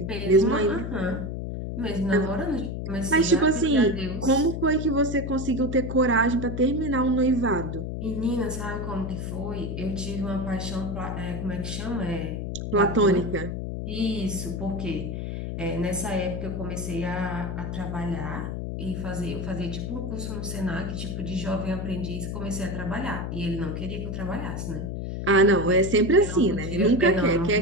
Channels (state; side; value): noise; left; hum, 4 dB below the sound